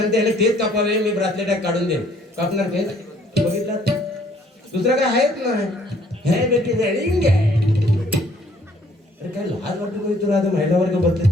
याला तेच कापावे मी ब्रासलेट काढून देईन कापणार तेच बघितलं दुसरा काय आहेच नाही हे बेटी वेडिंग आहे अरे काय लाज वाटतो काही तुला आता महिला वर्ग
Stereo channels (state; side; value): normal; both; correlation 0.61